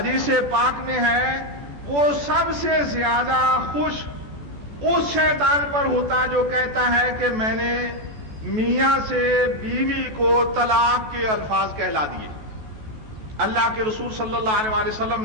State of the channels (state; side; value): late; left; 14 ms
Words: پاک میں ہے وہ سب سے زیادہ خوش اس شیطان پر ہوتا جو کہتا ہے کہ میں نے میاں سے بیوی کو طلاق کے الفاظ کہلا دیے۔ اللہ کے رسول صلی اللہ علیہ وآلہ وسلم